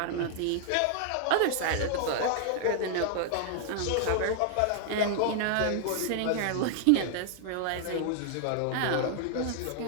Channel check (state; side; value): different; both; correlation -0.01